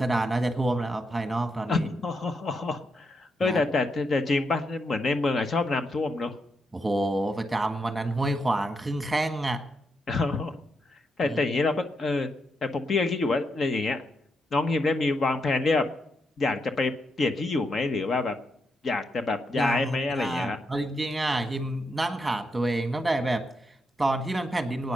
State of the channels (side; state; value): both; normal; correlation 0.82